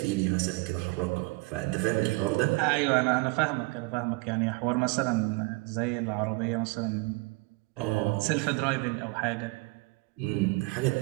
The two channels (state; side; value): quieter; left; 25.9 dB